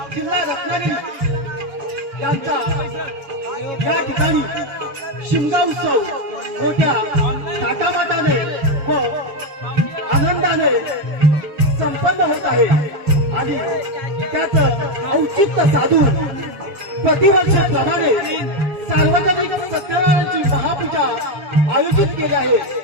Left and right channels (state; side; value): late; left; 6.9 ms